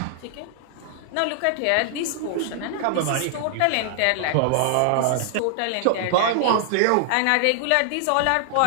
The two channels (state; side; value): different; both; correlation 0.00